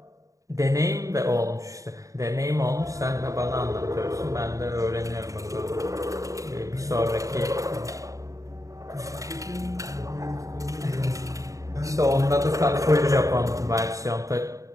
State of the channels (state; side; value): late; left; 0.16 ms